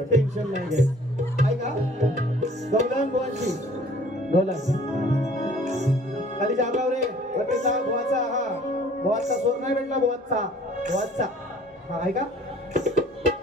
टेन्शन नाही घ्यायचं. ऐका गौलान बुवांची, गौलान खाली जागराव रे बटेचा बुवाचा, हा बुवाचा सोर नाही भेटला, बुवाचा बुवाचा. हा ऐका,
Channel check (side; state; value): both; normal; correlation 0.53